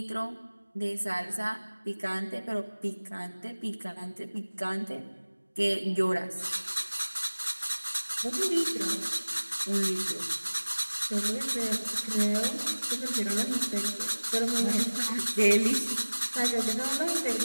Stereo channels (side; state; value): both; inverted; correlation -1.00